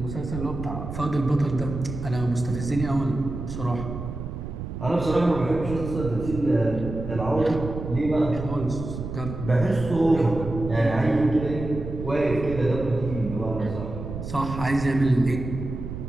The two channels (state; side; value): noise; right; rumble, 7 dB below the sound